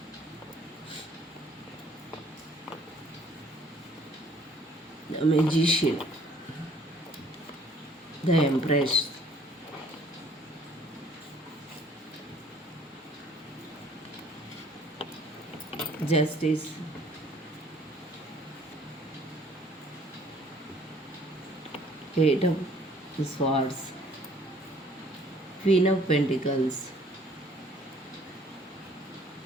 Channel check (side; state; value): both; normal; correlation 0.58